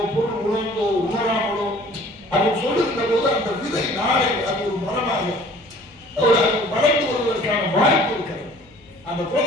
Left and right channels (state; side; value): noise; left; hum, 28 dB below the sound